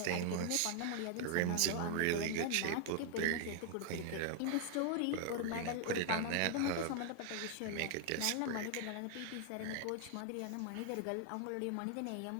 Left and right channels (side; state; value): both; different; correlation 0.00